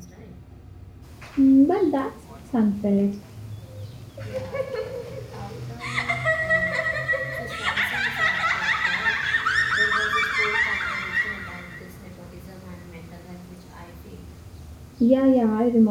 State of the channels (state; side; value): identical; both; correlation 1.00